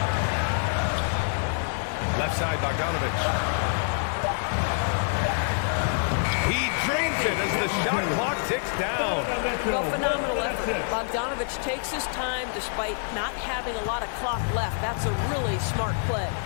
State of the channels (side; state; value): right; silent; 61 dB below the other